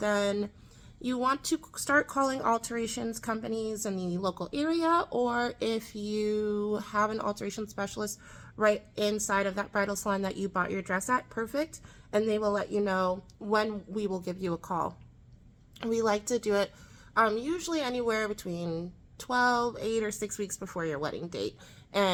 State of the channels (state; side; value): identical; both; correlation 1.00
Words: you want to start calling alterations companies in the local area, or if you have an alteration specialist right inside of that bridal salon that you bought your dress at, perfect, and they will let you know when we will give you a call. We like to do it usually anywhere between 12, 8, or 6 weeks before your wedding date.